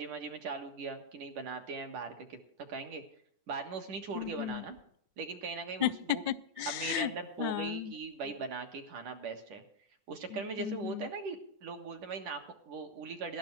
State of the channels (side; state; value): left; late; 10 ms